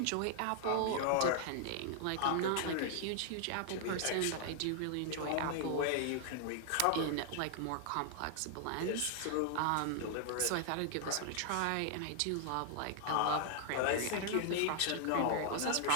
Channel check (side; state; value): both; different; correlation 0.00